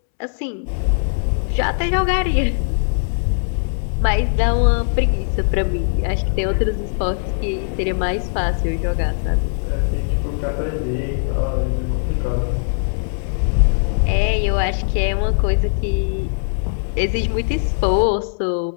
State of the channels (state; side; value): silent; right; 66 dB below the other